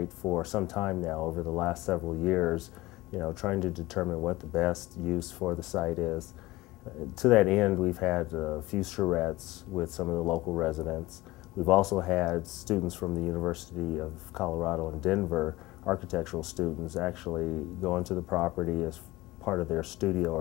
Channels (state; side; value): quieter; right; 19.3 dB